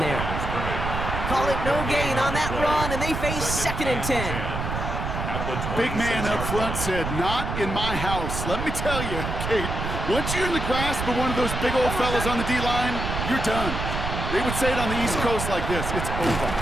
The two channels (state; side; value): noise; right; rumble, 4 dB below the sound